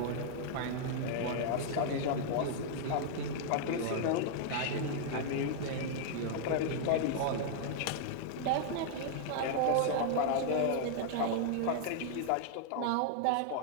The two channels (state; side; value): different; both; correlation -0.01